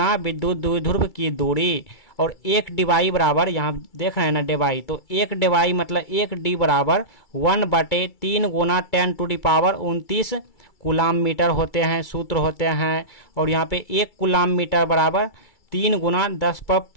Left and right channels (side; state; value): right; late; 2.3 ms